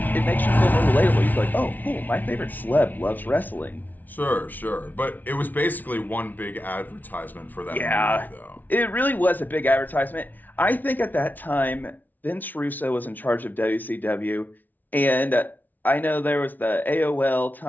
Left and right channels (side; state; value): right; late; 0.081 ms